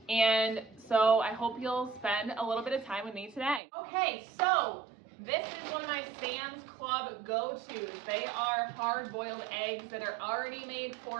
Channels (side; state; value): left; drops out; at 3.6 s